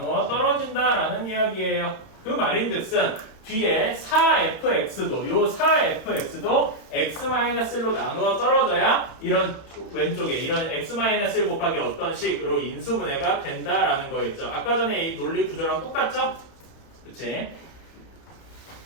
떨어진다라는 이야기예요. 그 말인즉슨 뒤에 4fx도 요 4fx도 x-1로 나누어 떨어져야 이런 왼쪽에 이런 x-1 곱하기 어떤 식으로 인수분해가 된다라는 거였죠. 아까 전에 이 논리 구조랑 똑같죠? 그치?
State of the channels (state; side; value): late; right; 31 ms